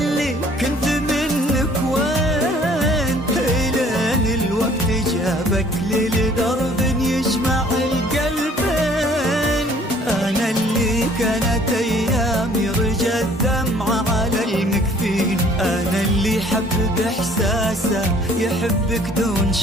كنت منك وين، إلين الوقت جابك لي لدرب يجمع القلبين. أنا اللي كانت أيامي رجى الدمعة على المكفين، أنا اللي حب بإحساسه يحبك دون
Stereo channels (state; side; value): normal; both; correlation 0.56